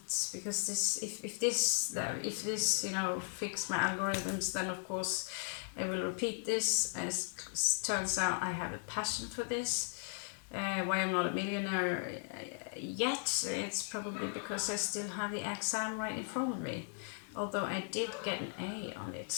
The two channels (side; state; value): right; silent; 53 dB below the other